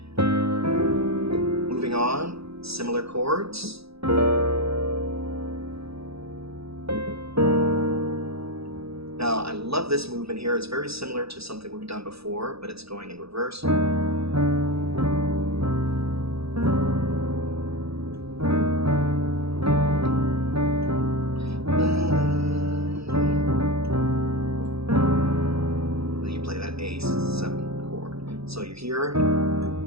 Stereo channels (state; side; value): late; left; 0.77 ms